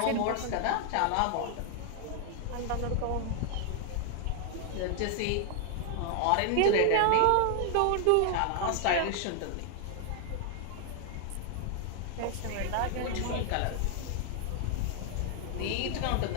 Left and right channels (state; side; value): different; both; correlation 0.00